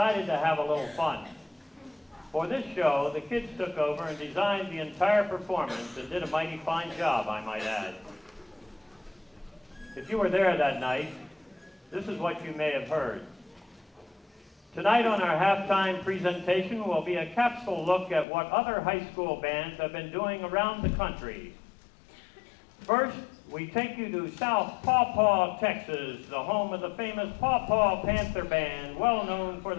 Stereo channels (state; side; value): drops out; right; at 18.2 s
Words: to have a little fun. For this show, the kids took over and designed the entire performance and did a mighty fine job, I might add. If you were there that night, this is what you may have heard. Tonight on our halftime presentation will be a capsule look at what other high school bands have been doing around the country. First, we take you to South Paw Paw, Texas, the home of the famous Paw Paw Panther Band, well known for